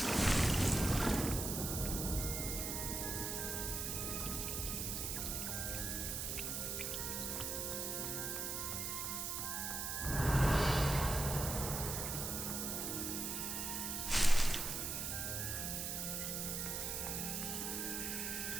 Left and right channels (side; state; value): right; noise; hiss, 2 dB below the sound